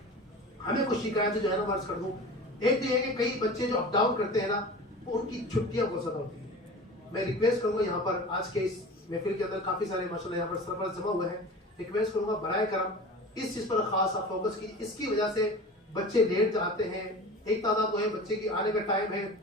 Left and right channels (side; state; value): both; normal; correlation 0.36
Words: ہمیں کچھ شکایتیں جو ہے نا عرض کر دوں۔ ایک تو یہ ہے کہ کئی بچے جو اپ ڈاؤن کرتے ہیں نا، ان کی چھٹیاں بہت زیادہ ہوتی ہیں۔ میں ریکویسٹ کروں گا، یہاں پر آج کے اس محفل کے اندر کافی سارے ماشاءاللہ یہاں پر سرپرست جمع ہوئے ہیں، ریکویسٹ کروں گا برائے کرم اس چیز پر خاص آپ فوکس کیجیے۔ اس کی وجہ سے بچے لیٹ جاتے ہیں، ایک تعداد وہ ہے بچے کی آنے کا ٹائم ہے